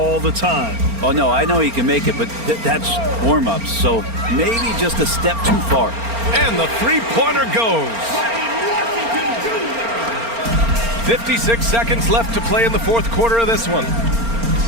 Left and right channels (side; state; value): left; late; 4.3 ms